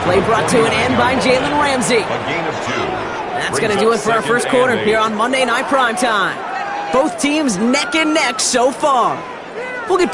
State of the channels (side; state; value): both; identical; correlation 1.00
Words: Play brought to an end by Jalen Ramsey. That's going to do it for our first quarter here on Monday Night Primetime. Both teams neck and neck so far. We'll get